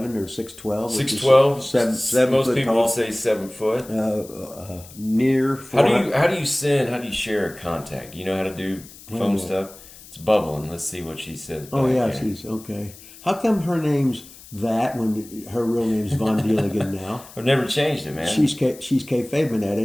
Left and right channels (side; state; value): left; noise; hiss, 20 dB below the sound